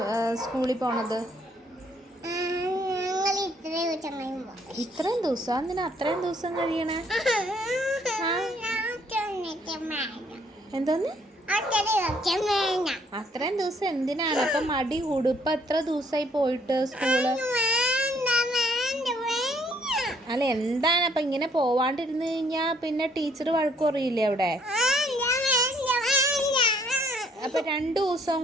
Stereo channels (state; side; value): normal; both; correlation 0.65